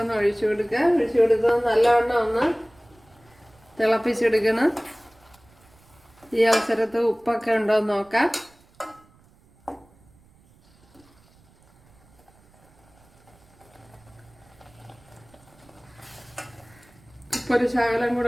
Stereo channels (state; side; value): noise; right; rumble, 30 dB below the sound